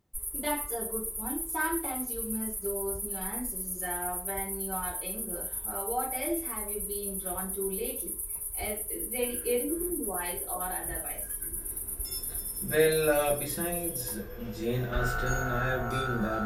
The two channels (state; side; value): identical; both; correlation 1.00